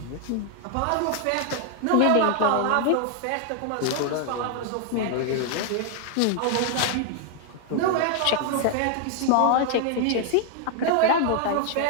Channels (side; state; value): both; different; correlation 0.00